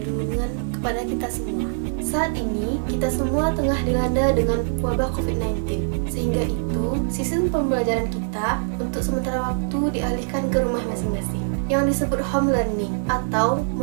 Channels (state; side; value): silent; left; 63 dB below the other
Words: kepada kita semua. Saat ini, kita semua tengah dilanda dengan wabah COVID-19. Sehingga itu, sistem pembelajaran kita untuk sementara waktu dialihkan ke rumah masing-masing, yang disebut home learning atau